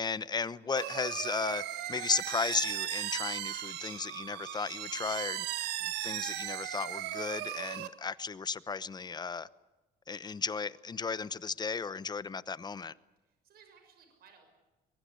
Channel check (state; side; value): normal; both; correlation 0.08